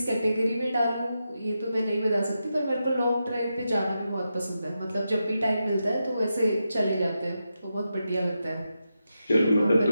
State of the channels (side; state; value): both; inverted; correlation -0.88